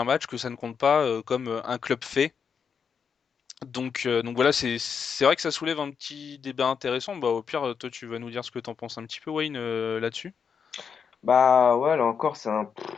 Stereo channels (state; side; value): quieter; right; 6.6 dB